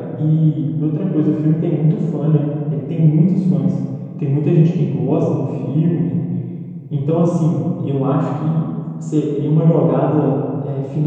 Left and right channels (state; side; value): identical; both; correlation 1.00